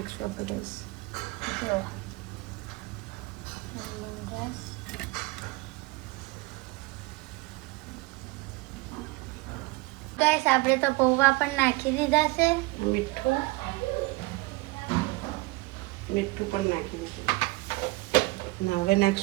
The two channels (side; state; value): left; quieter; 22.7 dB